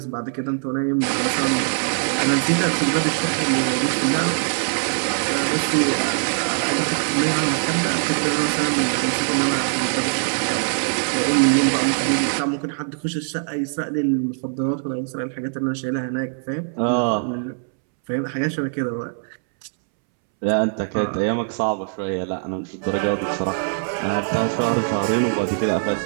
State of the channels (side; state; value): left; silent; 64 dB below the other